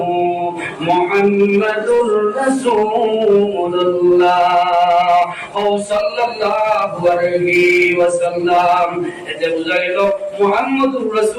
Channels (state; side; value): identical; both; correlation 1.00